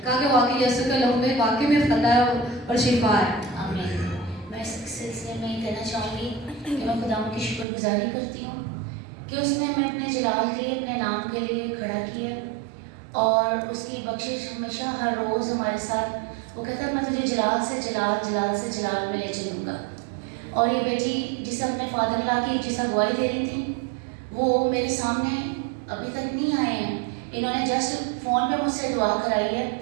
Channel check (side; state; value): left; drops out; at 7.7 s